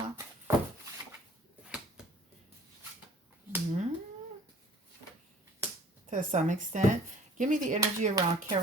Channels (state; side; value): normal; both; correlation 0.51